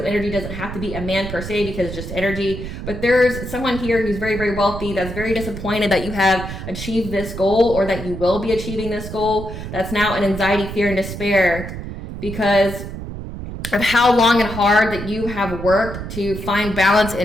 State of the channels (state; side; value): noise; right; rumble, 8 dB below the sound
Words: energy. Doesn't have to be a man per se because it's just energy, but there's someone here who's very, very wealthy that's very disappointed that you have achieved this goal or that you will be achieving this goal. That's now in anxiety, fear, and despair because of how long and hard that you have worked to find balance